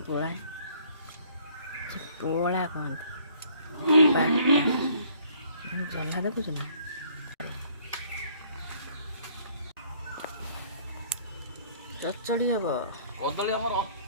পোড়াই পোড়া কোন বাটা জলা দেখুছ না চচ্চড়ি হব କଦଳୀ ଆମର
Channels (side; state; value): both; inverted; correlation -0.60